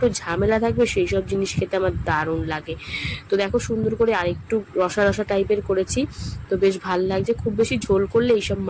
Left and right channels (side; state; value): both; identical; correlation 1.00